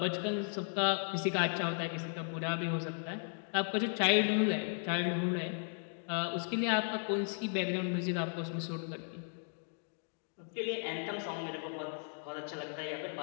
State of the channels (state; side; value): silent; right; 54 dB below the other